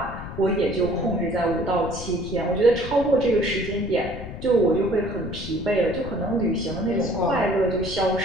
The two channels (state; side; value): noise; left; rumble, 10 dB below the sound